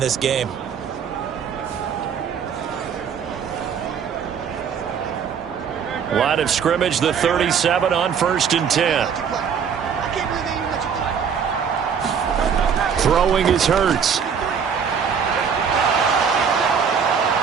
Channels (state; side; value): quieter; left; 7.0 dB